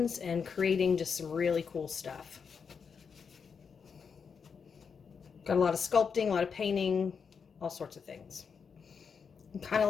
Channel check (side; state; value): right; quieter; 6.1 dB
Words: and creating just some really cool stuff. Got a lot of sculpting, a lot of painting, all sorts of things. I'm kind of